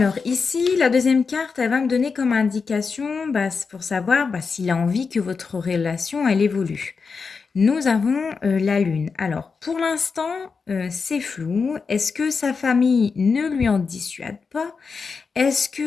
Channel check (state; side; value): quieter; right; 5.1 dB